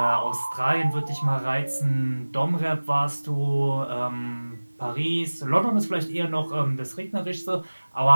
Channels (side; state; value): both; inverted; correlation -1.00